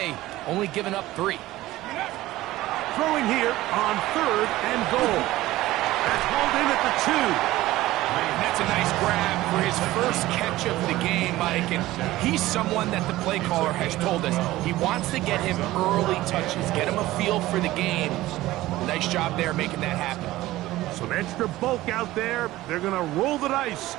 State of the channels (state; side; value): quieter; left; 16.8 dB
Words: only giving up 3. Throwing here on third and goal. That's hauled in at the 2. And that's a nice grab for his first catch of the game, Mike. And he's someone that the play caller has told us he wants to get him early touches, get him a feel for the game. Nice job there making that happen. Some extra bulk out there. They're going to roll the dice